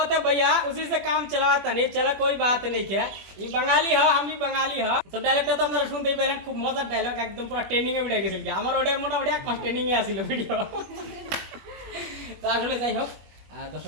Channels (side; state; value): left; late; 21 ms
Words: है भैया, उसी से काम चलाता नहीं चला, कोई बात नहीं क्या। ये बंगाली है, हम भी बंगाली है। तो डायलॉगটা তো আপনারা শুনতেই পেলেন, খুব মজার ডায়লগ, একদম পুরো ট্রেন্ডিং এ উঠে গেছিল। আমার ওটা মোটামুটি এক মাস ট্রেন্ডিং এ আসিল ভিডিও। তো আসলে যাই হোক,